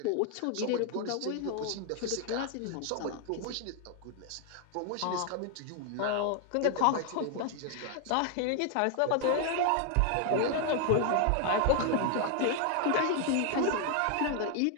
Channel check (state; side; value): different; both; correlation 0.00